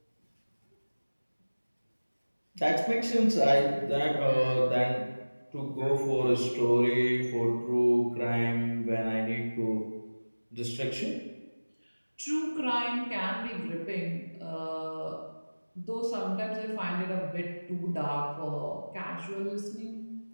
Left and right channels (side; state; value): both; inverted; correlation -1.00